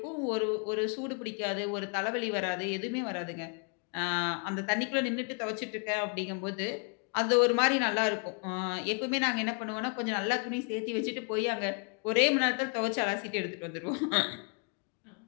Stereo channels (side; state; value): right; quieter; 37.9 dB